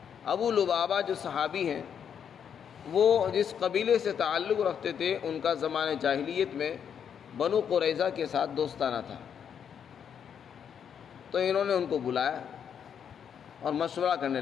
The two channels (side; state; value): right; quieter; 8.0 dB